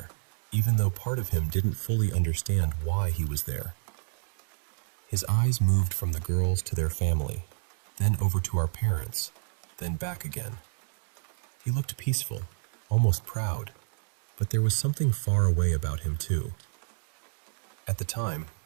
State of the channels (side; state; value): left; silent; 58 dB below the other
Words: even though part of him didn't fully understand why he was there. His eyes moved from the girls to their family, then over to our parents, then back again. He looked peaceful, almost proud, but there was something far away about him too. At the time,